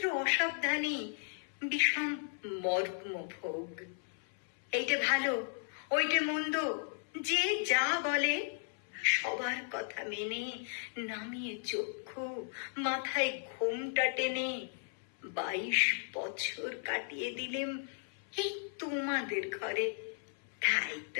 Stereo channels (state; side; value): silent; right; 54 dB below the other